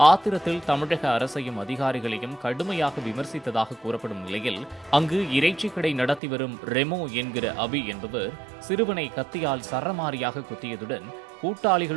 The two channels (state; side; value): drops out; left; at 6.2 s